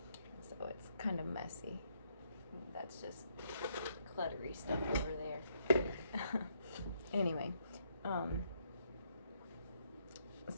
So it's kind of messy. That's just cluttery stuff over there. Anyway,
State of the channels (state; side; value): inverted; both; correlation -0.74